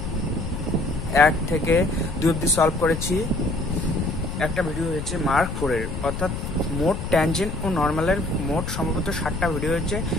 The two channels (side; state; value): left; noise; rumble, 5 dB below the sound